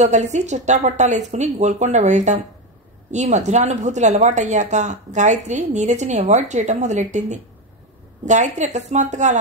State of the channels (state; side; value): normal; both; correlation 0.12